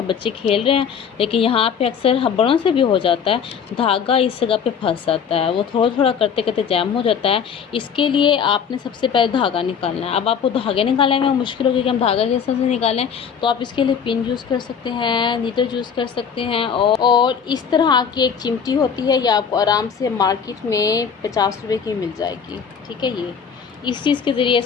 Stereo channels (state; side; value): quieter; right; 7.0 dB